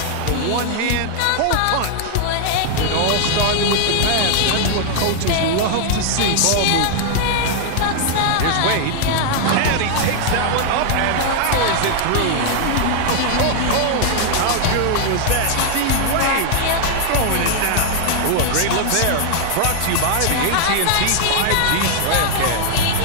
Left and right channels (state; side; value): different; both; correlation 0.00